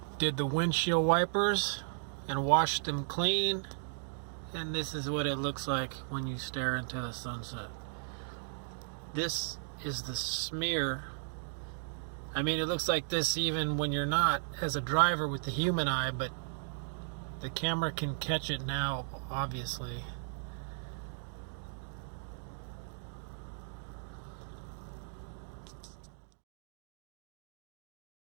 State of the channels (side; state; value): left; silent; digital silence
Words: did the windshield wipers and washed them clean, and this is what it looks like when you stare into the sunset. This is the smear. I mean, it looks like this even when you're not as a driver with the human eye, but the camera can catch it now, obviously.